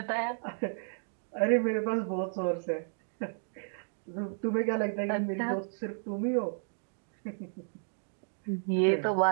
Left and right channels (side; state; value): left; silent; digital silence